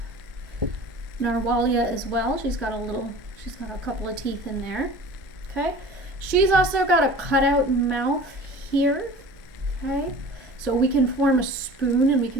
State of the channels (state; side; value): normal; both; correlation 0.41